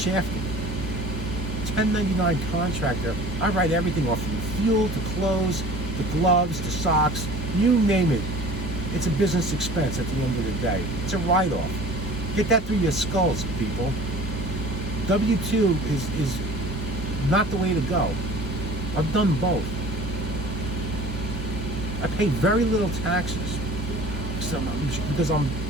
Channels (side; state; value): both; normal; correlation 0.44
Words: 1099 contractor, I write everything off from fuel to clothes, the gloves, the socks, you name it. It's a business expense at the end of the day. It's a write-off. Get that through your skulls, people. W-2 is not the way to go. I've done both. I pay very little taxes because I